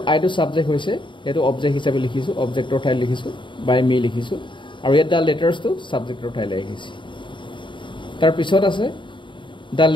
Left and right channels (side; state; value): right; late; 0.23 ms